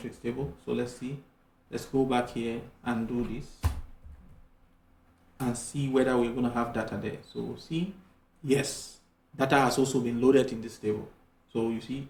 table. So let's see. Let's go back here and do this and see whether we're going to have data there. So see, yes, data has also been loaded in this table. So you see,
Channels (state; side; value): identical; both; correlation 1.00